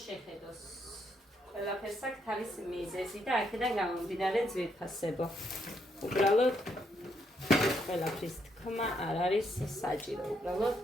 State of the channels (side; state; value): both; normal; correlation 0.75